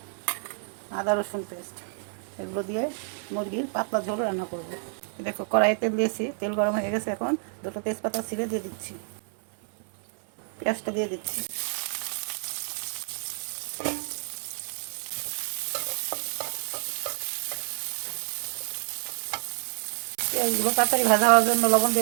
আদা রসুন পেস্ট, এগুলো দিয়ে মুরগির পাতলা ঝোল রান্না করব। দেখো, কড়াইয়ে তেল দিয়েছি, তেল গরম হয়ে গেছে। এখন দুটো তেজপাতা ছিঁড়ে দিয়ে দিচ্ছি, পেঁয়াজটা দিয়ে দিচ্ছি। পেঁয়াজগুলো তাড়াতাড়ি ভাজা হওয়ার জন্য লবণ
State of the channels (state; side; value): silent; left; 59 dB below the other